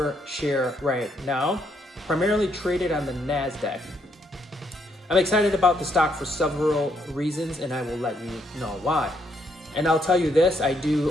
share right now, primarily traded on the NASDAQ. I'm excited about the stock for several reasons, and I will let you know why. And I'll tell you this, I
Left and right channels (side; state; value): both; normal; correlation 0.73